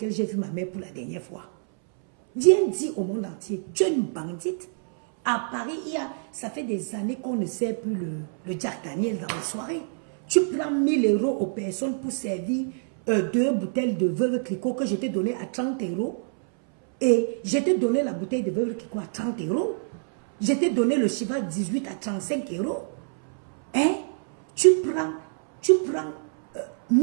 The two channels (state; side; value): silent; left; 61 dB below the other